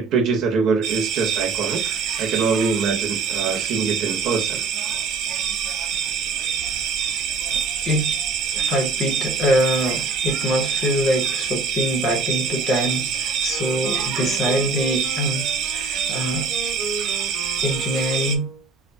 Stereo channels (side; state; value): left; quieter; 3.9 dB